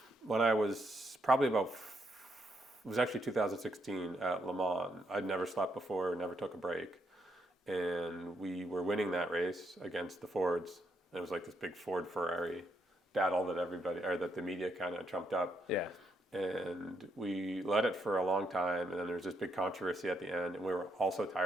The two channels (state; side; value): normal; both; correlation 0.77